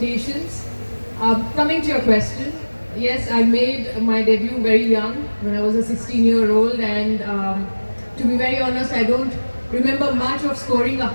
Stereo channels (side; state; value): both; inverted; correlation -1.00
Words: Coming to your question, yes, I made my debut very young when I was a 16-year-old, and to be very honest, I don't remember much of scoring